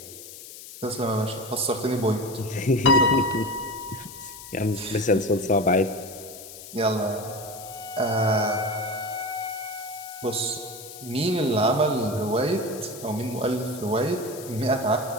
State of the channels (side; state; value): left; noise; hiss, 14 dB below the sound